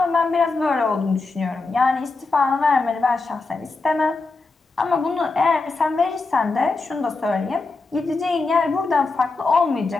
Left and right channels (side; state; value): right; quieter; 3.8 dB